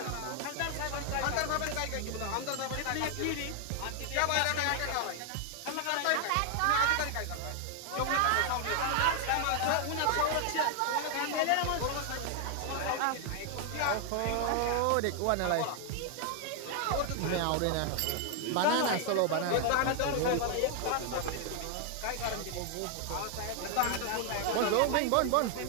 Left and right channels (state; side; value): different; both; correlation 0.00